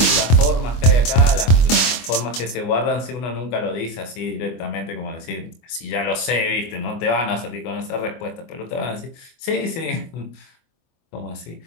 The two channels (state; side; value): late; right; 24 ms